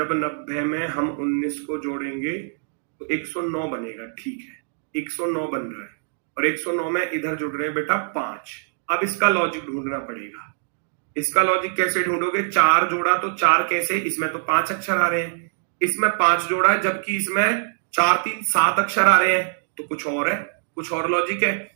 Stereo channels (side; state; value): left; silent; digital silence